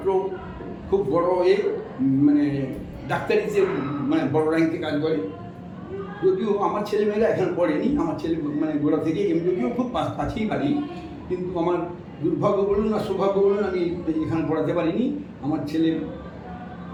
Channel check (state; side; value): identical; both; correlation 1.00